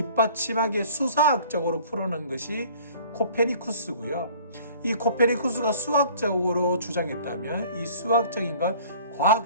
수사학적으로 풀어낸 것이 코페니쿠스고요. 이 코페니쿠스가 수학적으로 주장했다면 이 수학적인 걸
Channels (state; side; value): inverted; both; correlation -0.50